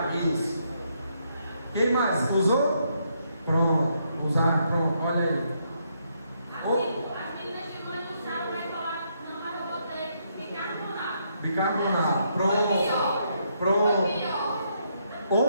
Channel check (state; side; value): inverted; both; correlation -0.75